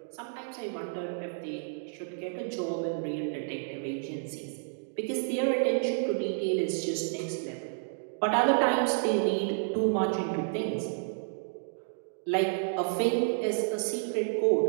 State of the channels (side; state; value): left; silent; digital silence